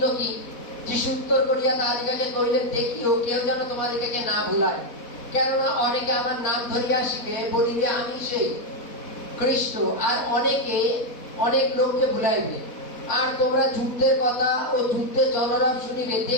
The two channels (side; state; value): right; late; 4.1 ms